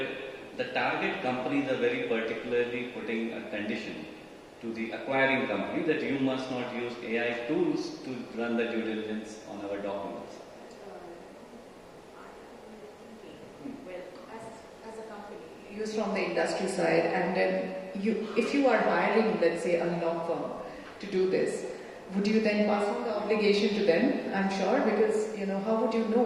the target companies are very particularly putting a condition to the acquiring company that you must not use AI tools to run the due diligence on our documents. Well, as a company, Use from the industry side, and then if you are hiring, let's say, a law firm to do this, would you then pass on the obligation to them? I'm sure, because how would you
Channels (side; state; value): both; identical; correlation 1.00